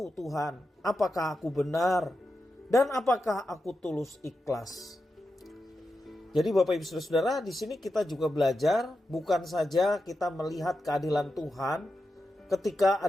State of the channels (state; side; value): normal; both; correlation 0.89